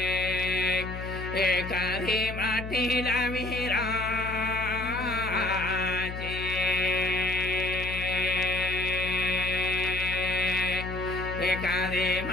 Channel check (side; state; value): left; noise; hum, 8 dB below the sound